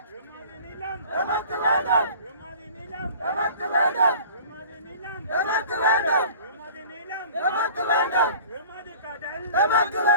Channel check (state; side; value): inverted; both; correlation -0.45